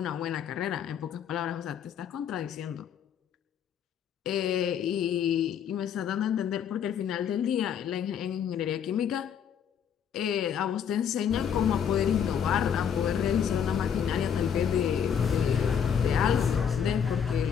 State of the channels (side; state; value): right; quieter; 8.0 dB